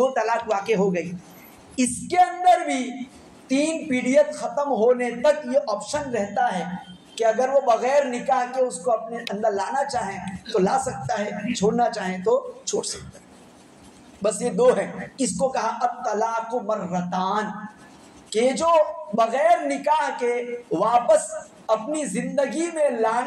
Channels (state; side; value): identical; both; correlation 1.00